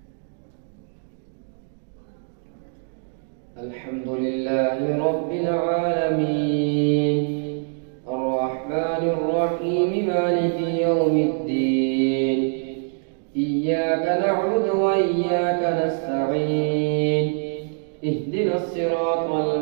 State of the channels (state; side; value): silent; left; digital silence